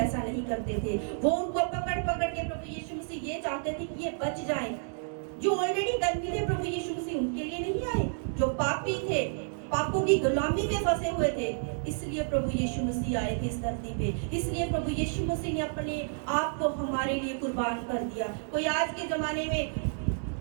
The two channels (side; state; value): left; silent; digital silence